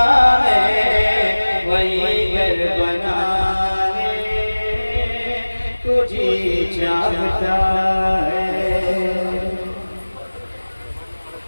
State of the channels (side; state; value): both; inverted; correlation -1.00